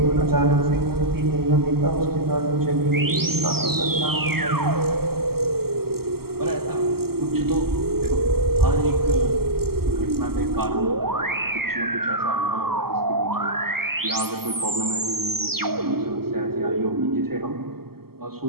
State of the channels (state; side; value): late; left; 0.95 ms